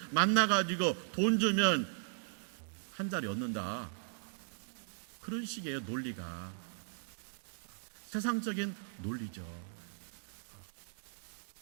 만나가지고 돈 주면 한 자리 얻는다. 그런 식의 논리가 세상적인 논리죠.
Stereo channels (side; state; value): left; silent; digital silence